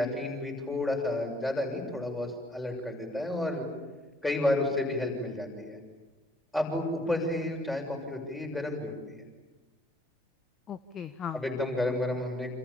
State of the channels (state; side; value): normal; both; correlation 0.63